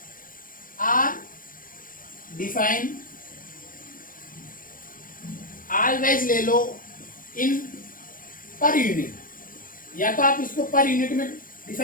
are define, always ले लो इन पर यूनिट, या तो आप इसको पर यूनिट में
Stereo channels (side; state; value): right; late; 0.40 ms